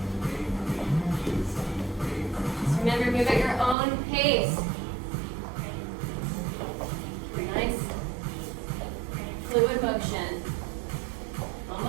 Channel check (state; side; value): drops out; left; at 3.8 s